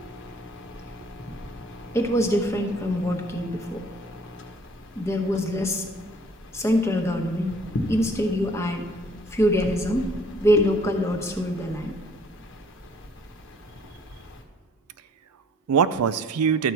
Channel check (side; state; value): both; normal; correlation 0.56